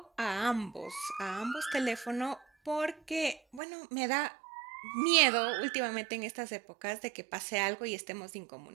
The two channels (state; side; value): drops out; left; at 3.6 s